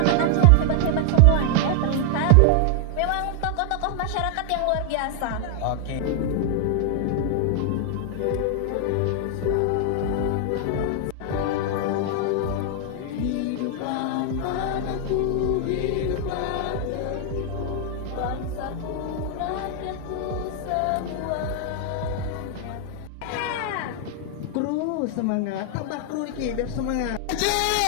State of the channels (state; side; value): different; both; correlation 0.00